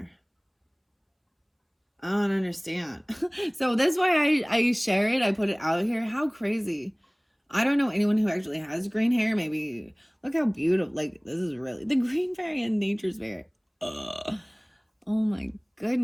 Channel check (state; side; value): identical; both; correlation 1.00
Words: I don't understand. So that's why I share it. I put it out here. How crazy. I don't know anyone who actually has green hair. Maybe look how beautiful. Like, this is really the green fairy and nature's fairy. Ugh. Oh my